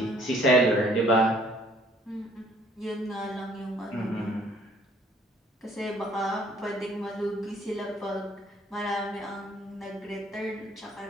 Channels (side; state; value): both; normal; correlation 0.59